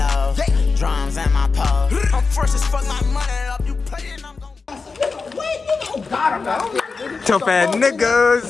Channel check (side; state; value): right; quieter; 4.5 dB